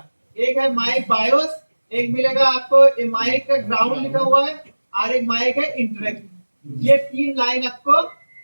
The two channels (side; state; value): both; inverted; correlation -1.00